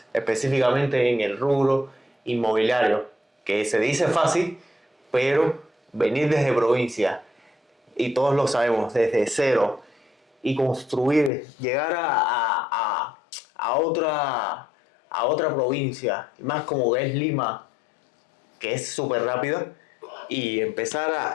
específicamente en el rubro inmobiliario, que se dice fácil, pero venir desde provincia, y todos lo sabemos, desde cero, y construir, llegar a otra provincia, más como es Lima, que es súper rápida, y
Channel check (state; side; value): drops out; right; at 11.3 s